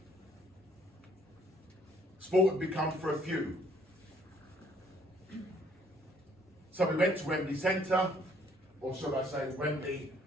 Sport had become for a few. So we went to Wembley Centre, or should I say Wembley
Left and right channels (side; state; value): both; normal; correlation 0.63